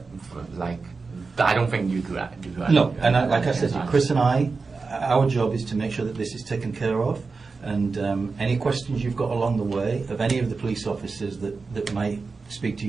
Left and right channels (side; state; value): left; quieter; 4.4 dB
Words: like, I don't think you could. No, and like I said, Chris and I, our job is to make sure that this is taken care of, and any questions you've got along the way of any of the police officers that might speak to